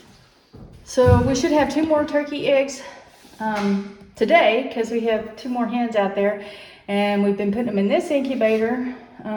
So we should have 2 more turkey eggs today because we have 2 more hens out there, and we've been putting them in this incubator.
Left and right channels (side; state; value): both; identical; correlation 1.00